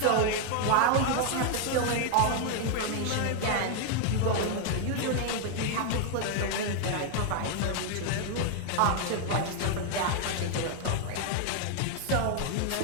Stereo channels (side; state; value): both; different; correlation 0.00